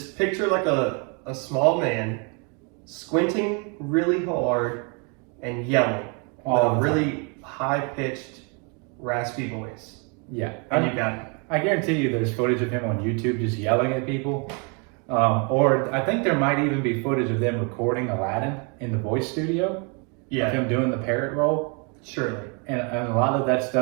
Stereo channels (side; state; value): left; quieter; 34.9 dB